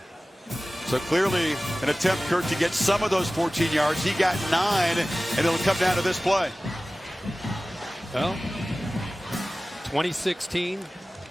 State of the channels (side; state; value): both; normal; correlation 0.97